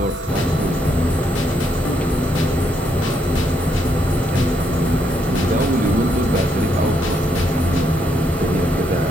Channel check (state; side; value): normal; both; correlation 0.75